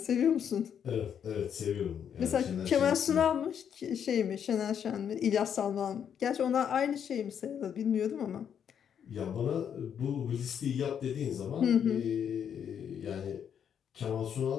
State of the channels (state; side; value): quieter; right; 8.3 dB